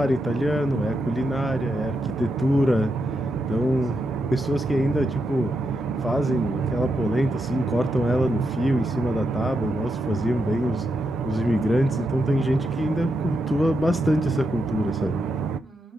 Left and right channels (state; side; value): normal; both; correlation 0.84